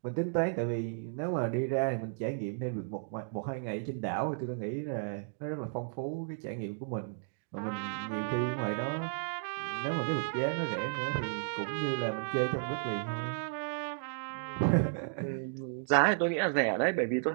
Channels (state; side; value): silent; left; digital silence